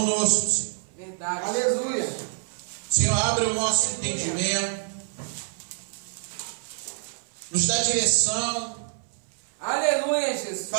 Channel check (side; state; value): left; silent; 60 dB below the other